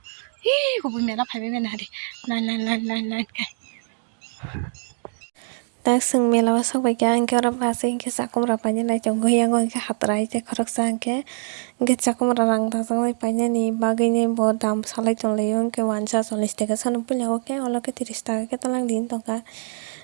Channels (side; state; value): left; silent; 63 dB below the other